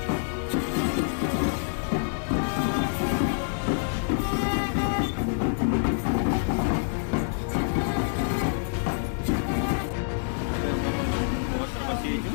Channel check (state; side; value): silent; right; digital silence